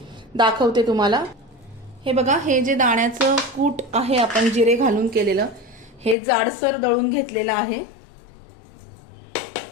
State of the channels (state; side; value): drops out; right; at 6.2 s